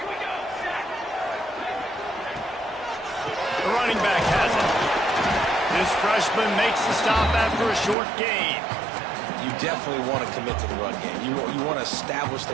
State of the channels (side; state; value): left; drops out; at 8.0 s